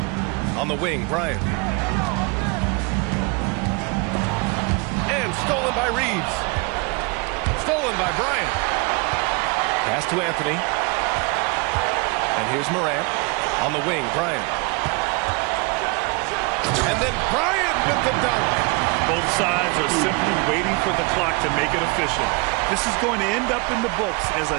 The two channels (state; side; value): quieter; left; 29.6 dB